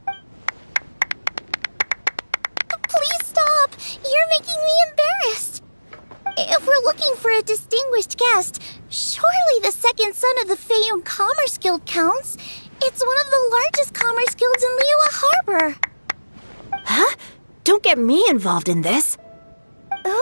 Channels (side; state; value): both; inverted; correlation -1.00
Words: Please stop! You're making me embarrassed. If we're looking for a distinguished guest, surely the second son of the Feiyun Commerce Guild counts. It's one of the largest commerce guilds in Liyue Harbor. Huh? Don't get me involved in this.